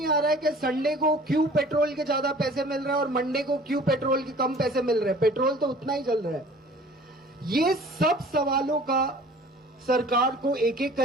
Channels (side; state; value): both; normal; correlation 0.48